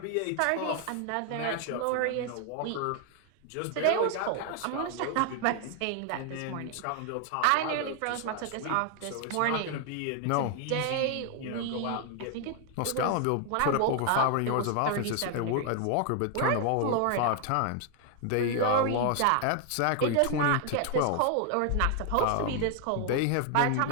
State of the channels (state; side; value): different; both; correlation 0.00